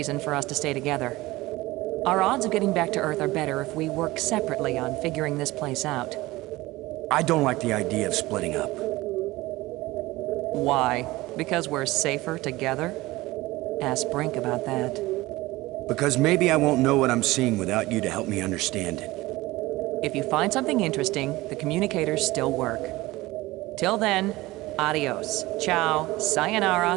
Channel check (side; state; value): left; quieter; 19.3 dB